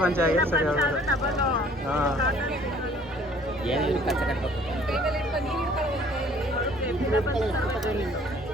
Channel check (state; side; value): normal; both; correlation 0.56